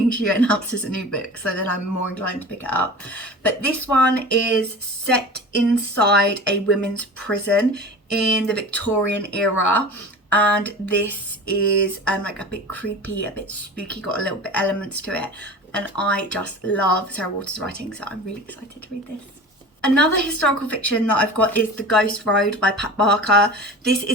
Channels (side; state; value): both; normal; correlation 0.36